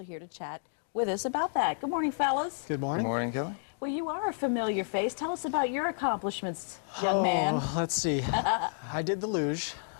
here to chat with us about that. Good morning, fellas. Good morning. Good morning, Kelly. Well, you are a familiar face. Tell us about your accomplishments, young man. Let's see. I did the luge.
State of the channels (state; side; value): silent; right; digital silence